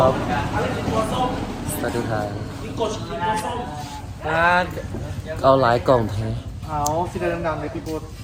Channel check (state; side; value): identical; both; correlation 1.00